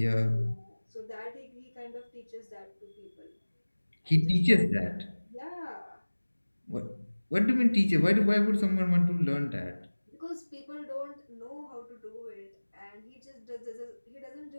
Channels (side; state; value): both; inverted; correlation -1.00